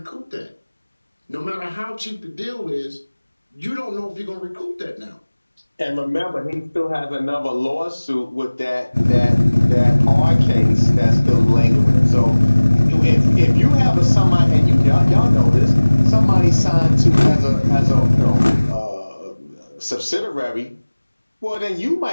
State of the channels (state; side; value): inverted; both; correlation -1.00